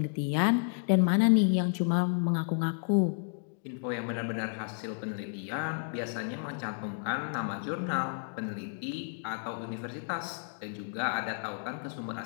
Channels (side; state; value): right; silent; digital silence